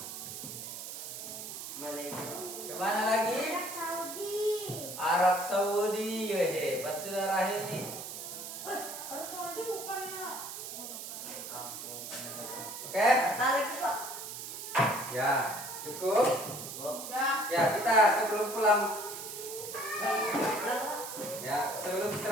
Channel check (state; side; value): noise; right; hiss, 8 dB below the sound